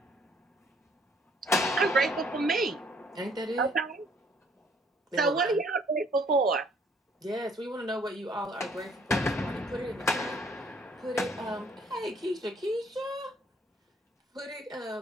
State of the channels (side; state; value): both; normal; correlation 0.62